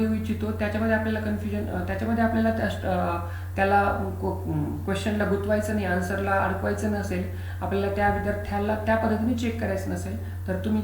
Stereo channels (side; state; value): both; identical; correlation 1.00